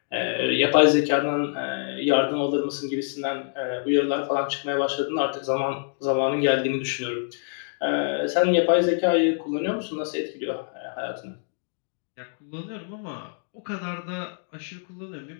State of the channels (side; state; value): right; silent; digital silence